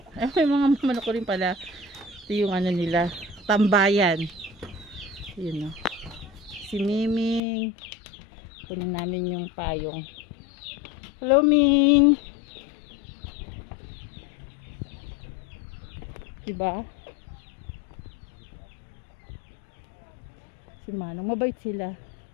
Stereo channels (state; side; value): drops out; right; at 7.4 s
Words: Ay, may mga manok ko rin pala. Ito yung ano nila, tambayan. Yun o. Si Miming. Kunin namin yung payong. Hello, Ming! Diba? Si Manong, mabait sila.